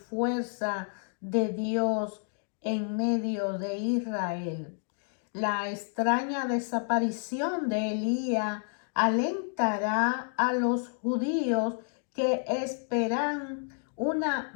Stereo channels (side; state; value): right; silent; 58 dB below the other